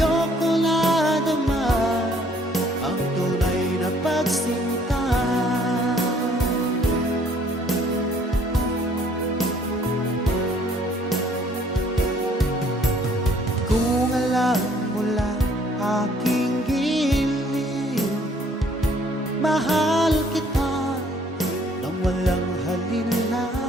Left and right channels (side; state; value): both; normal; correlation 0.61